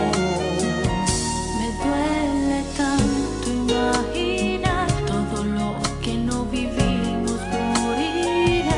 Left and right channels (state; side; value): identical; both; correlation 1.00